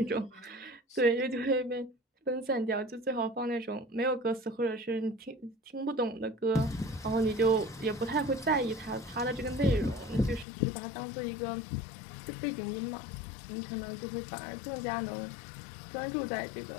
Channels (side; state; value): right; drops out; at 10.5 s